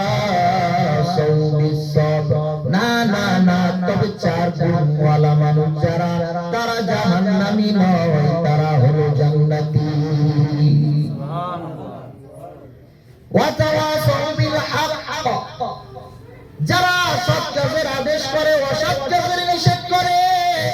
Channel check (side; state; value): both; identical; correlation 1.00